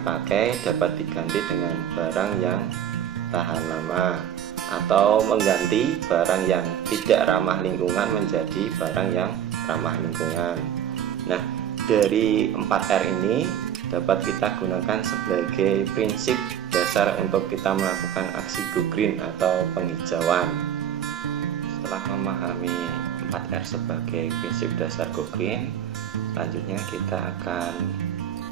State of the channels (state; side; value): quieter; left; 9.7 dB